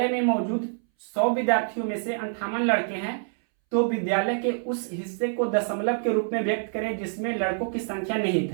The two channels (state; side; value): silent; left; 61 dB below the other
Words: में मौजूद 100 विद्यार्थियों में से 58 लड़के हैं तो विद्यालय के उस हिस्से को दशमलव के रूप में व्यक्त करें जिसमें लड़कों की संख्या निहित